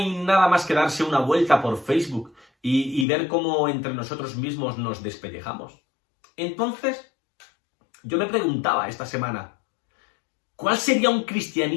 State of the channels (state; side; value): drops out; right; at 3.1 s